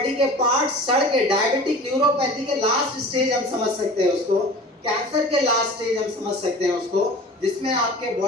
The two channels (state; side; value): normal; both; correlation 0.39